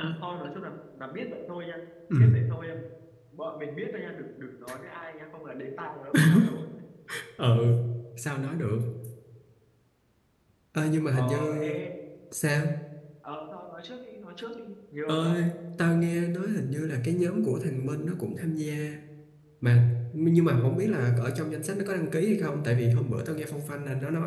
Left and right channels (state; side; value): identical; both; correlation 1.00